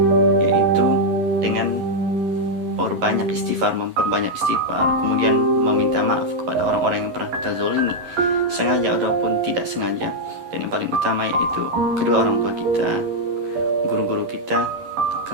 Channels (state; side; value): late; left; 11 ms